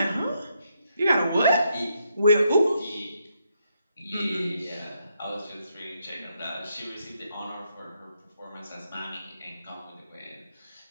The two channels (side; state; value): both; inverted; correlation -0.78